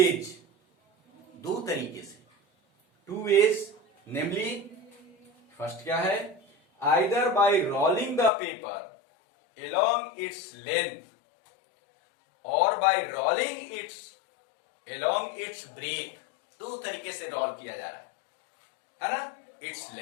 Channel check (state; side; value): drops out; right; at 8.3 s